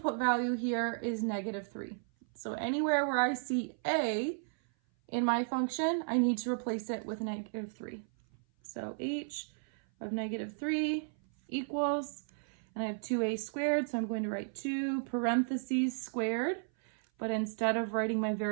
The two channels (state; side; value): silent; left; 55 dB below the other